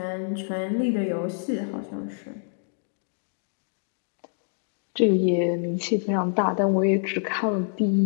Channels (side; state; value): right; silent; digital silence